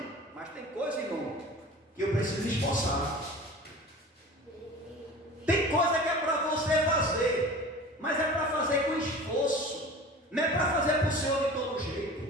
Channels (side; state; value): both; normal; correlation 0.38